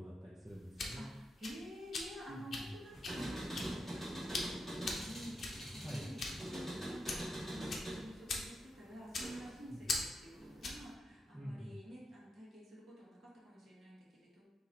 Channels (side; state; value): both; normal; correlation 0.85